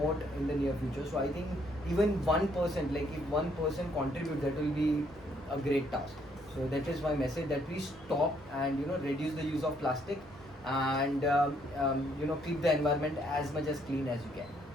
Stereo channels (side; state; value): both; normal; correlation 0.69